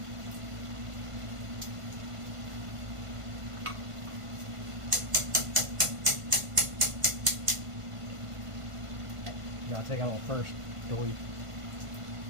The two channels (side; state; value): left; late; 1.5 ms